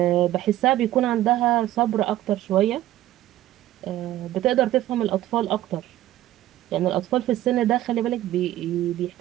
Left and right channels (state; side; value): quieter; left; 14.1 dB